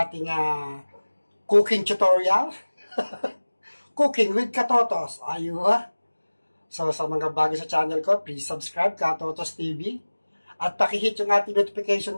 cooking tutorial. Cooking with Katotos. Ayun. So, sa mga bago sa channel ko, please subscribe, Katotos TV. At pakihit yung ating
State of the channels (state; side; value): inverted; both; correlation -1.00